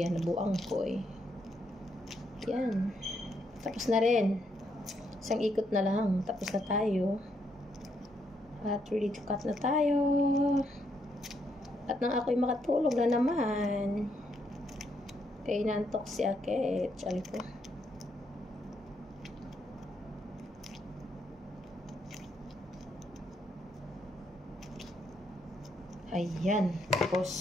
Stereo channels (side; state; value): both; normal; correlation 0.75